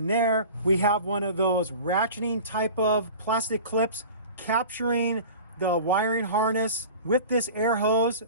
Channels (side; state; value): both; inverted; correlation -0.38